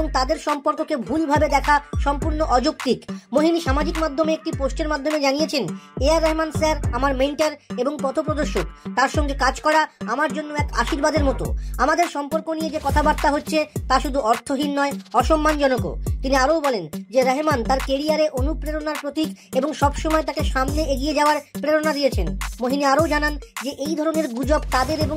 তাদের সম্পর্ককে ভুলভাবে দেখা সম্পূর্ণ অযৌক্তিক। মোহিনী সামাজিক মাধ্যমে একটি পোস্টের মাধ্যমে জানিয়েছেন, এআর রহমান স্যার আমার মেন্টর এবং পথপ্রদর্শক, তার সঙ্গে কাজ করা আমার জন্য এক আশীর্বাদের মতো। আমাদের সম্পর্ক নিয়ে যে কথাবার্তা হচ্ছে তা শুধু অর্থহীন নয়, অসম্মানজনকও। তিনি আরও বলেন যে রহমান তার কেরিয়ারে অনুপ্রেরণার প্রতীক এবং সবসময় তাকে সামনে এগিয়ে যাওয়ার প্রেরণা দিয়েছেন। মোহিনী আরও জানান যে এই ধরনের গুজব তাদের এবং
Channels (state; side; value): identical; both; correlation 1.00